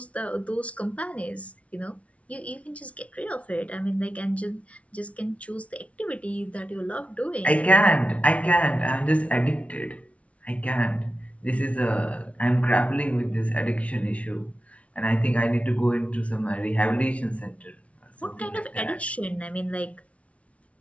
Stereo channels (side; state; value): right; late; 0.064 ms